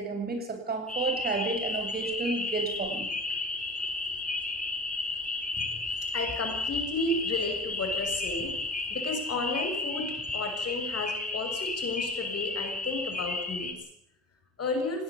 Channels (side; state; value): both; normal; correlation 0.35